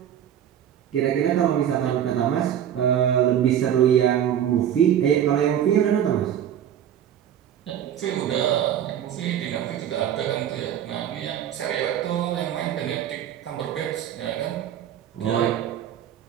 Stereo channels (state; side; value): quieter; left; 10.1 dB